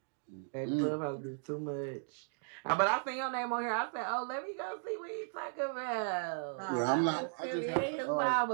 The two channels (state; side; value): silent; left; digital silence